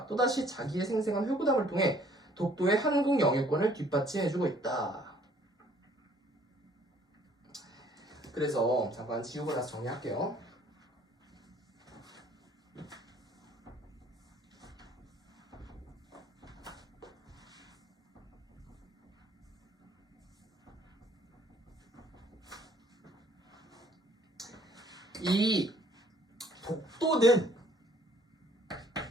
또다시 자기의 생생한 회고담을 통해 독도의 한국 영유권을 뒷받침해주고 있다. 그래서 잠깐 지우고 나서 정리할게요. 이 독도는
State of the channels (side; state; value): both; normal; correlation 0.60